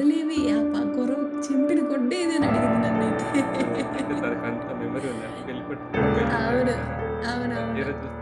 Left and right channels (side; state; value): both; identical; correlation 1.00